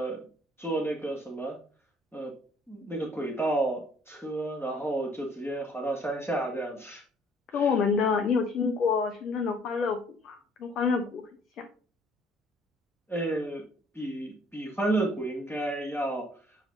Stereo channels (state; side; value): normal; both; correlation 0.59